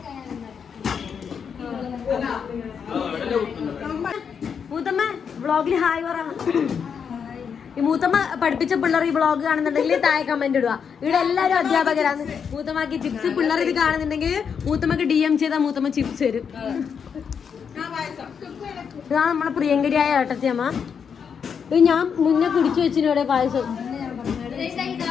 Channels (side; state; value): right; quieter; 6.8 dB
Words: മൂത്തമ്മ വ്ളോഗിൽ ഹായ് പറ. ഈ മൂത്തമ്മ പഠിപ്പിച്ച പിള്ളേർ ഈ വ്ളോഗ് കാണുന്നുണ്ടെങ്കിൽ താഴെ കമന്റ് ഇടുക. ഇവിടെ എല്ലാവരും അധ്യാപകരാണ്. മൂത്തമ്മക്ക് ചിപ്സ് പിള്ളേർ ഇത് കാണുന്നുണ്ടെങ്കിൽ മൂത്തമ്മക്ക് DM ചെയ്താൽ മൂത്തമ്മ ചിപ്സ് തരും. ഇതാണ് നമ്മളെ പ്രിയങ്കരിയായ ഏട്ടത്തിയമ്മ. ഇത് ഞാൻ മുന്നേ കുടിച്ചു വെച്ചിന് ഇവിടെ പായസം.